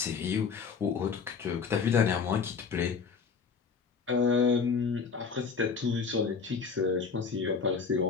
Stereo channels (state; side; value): quieter; right; 5.6 dB